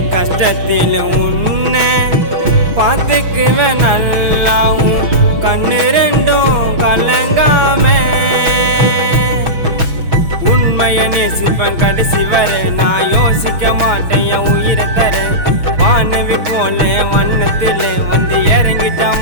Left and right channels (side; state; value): left; late; 6.2 ms